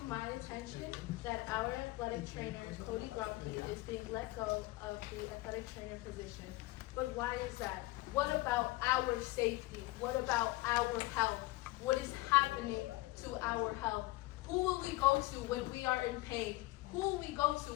my attention that our athletic trainer, Cody Grumpy, is being let go of the athletic trainer position. But why is that? What about our safety? What about our health? What is happening to our health? Who will we go to when we are in pain? Who will we go to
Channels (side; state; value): right; quieter; 19.9 dB